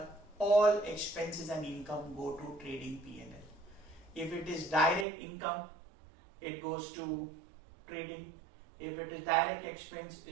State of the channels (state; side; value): drops out; left; at 5.1 s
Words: all expenses and income go to trading P&L. If it is direct income, it goes to trading. If it is direct expense,